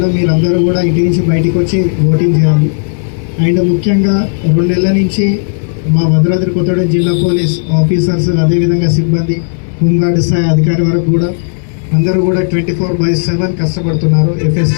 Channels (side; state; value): right; silent; 59 dB below the other